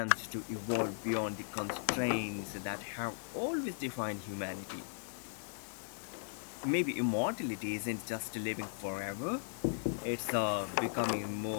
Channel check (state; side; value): silent; right; digital silence